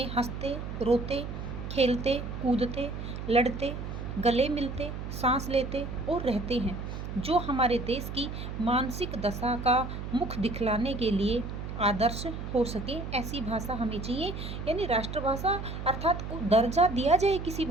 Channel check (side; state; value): right; noise; hum, 7 dB below the sound